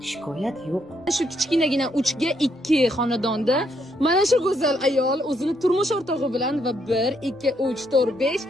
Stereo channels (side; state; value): both; normal; correlation 0.74